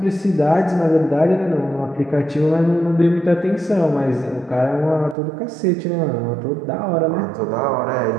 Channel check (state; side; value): drops out; left; at 5.2 s